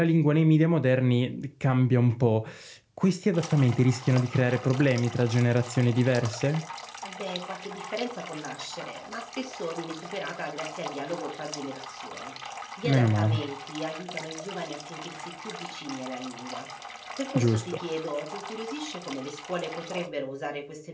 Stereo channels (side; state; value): both; identical; correlation 1.00